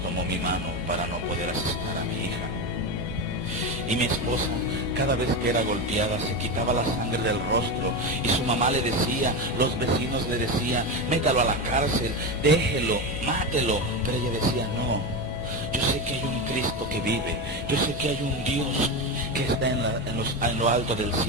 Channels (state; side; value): normal; both; correlation 0.17